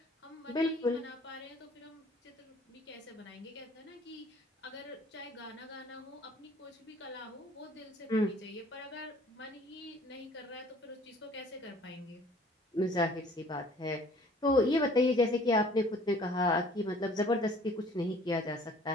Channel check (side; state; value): both; normal; correlation 0.53